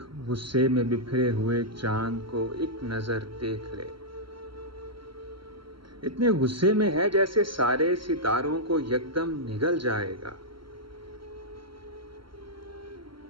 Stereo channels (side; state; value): left; late; 0.73 ms